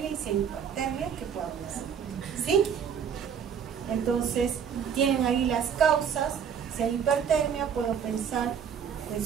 y si hay hipertermia, ¿qué puedo hacer? ¿Sí? Entonces tienen ahí las causas. Si hay hipertermia, puedo pensar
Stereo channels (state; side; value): quieter; left; 7.6 dB